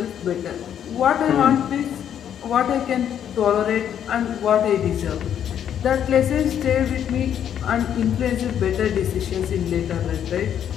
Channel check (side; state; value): right; quieter; 9.4 dB